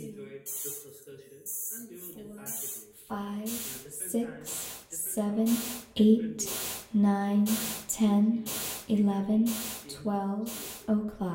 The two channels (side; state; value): both; identical; correlation 1.00